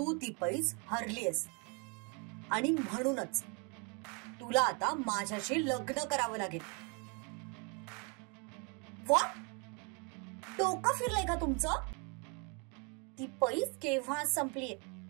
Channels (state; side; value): quieter; left; 33.7 dB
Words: ती पैस हरलीयस आणि म्हणूनच तुला आता माझ्याशी लग्न करावं लागेल. व्हॉट? डोकं फिरलंय का तुमचं? ती पैस केव्हा संपलीये